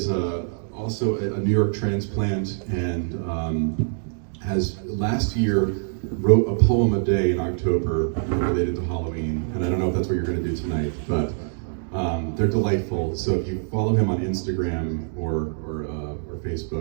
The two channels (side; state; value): left; silent; digital silence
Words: also a New York transplant and has last year wrote a poem a day in October related to Halloween, and I don't know if that's what you're going to do tonight, but they're delightful. So if you follow him on Instagram or